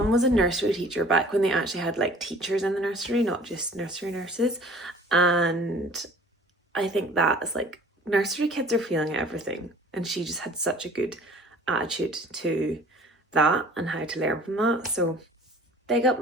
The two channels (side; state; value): both; normal; correlation 0.49